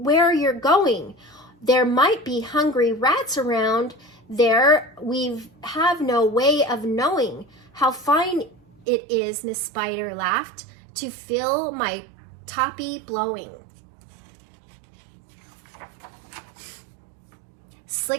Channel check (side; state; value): left; drops out; at 8.8 s